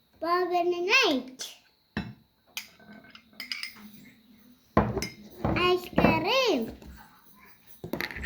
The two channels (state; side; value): identical; both; correlation 1.00